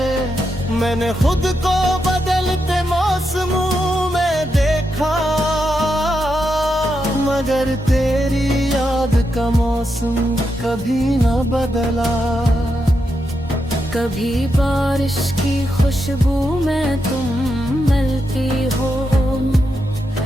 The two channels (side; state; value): both; normal; correlation 0.84